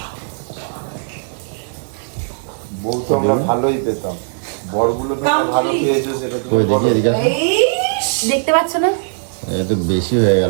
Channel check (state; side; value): silent; left; digital silence